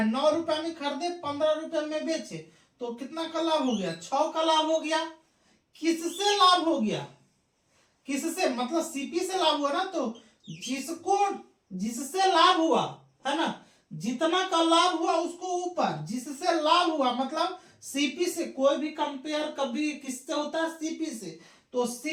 9 रुपए में खरीदे 15 रुपए में बेचे, तो कितना का लाभ हो गया, 6 का लाभ हो गया। किससे लाभ हो गया, किससे मतलब सीपी से लाभ हुआ ना, तो जिससे लाभ हुआ है ना, जितना का लाभ हुआ उसको ऊपर, जिससे लाभ हुआ मतलब सीपी से, कोई भी कंपेयर कभी किससे होता है सीपी से, तो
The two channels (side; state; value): both; identical; correlation 1.00